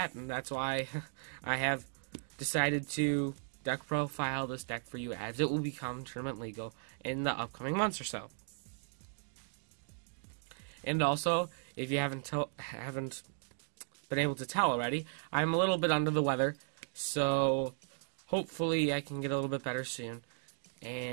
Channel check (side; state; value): left; silent; digital silence